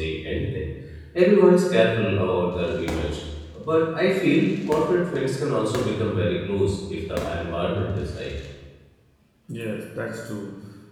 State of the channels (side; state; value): both; identical; correlation 1.00